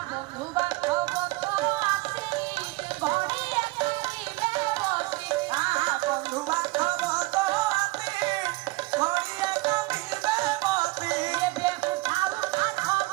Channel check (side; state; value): left; quieter; 22.2 dB